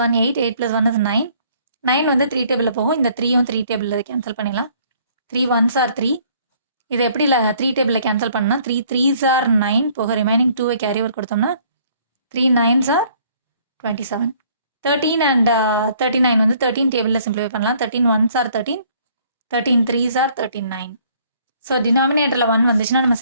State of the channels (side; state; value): both; inverted; correlation -0.60